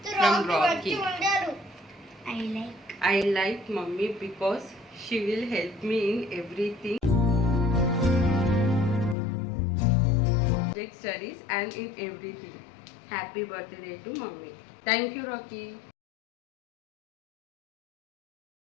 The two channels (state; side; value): drops out; right; at 9.2 s